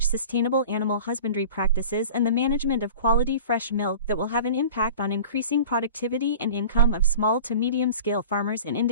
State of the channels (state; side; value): inverted; both; correlation -0.39